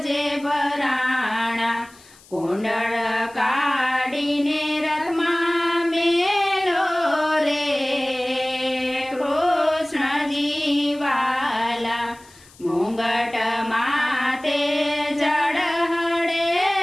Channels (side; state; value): left; noise; hiss, 25 dB below the sound